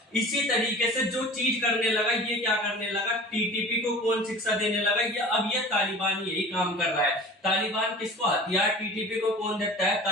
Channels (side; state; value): both; normal; correlation 0.40